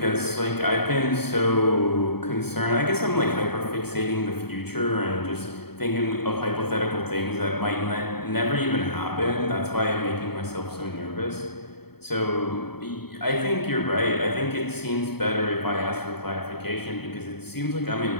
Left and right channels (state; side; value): late; right; 0.96 ms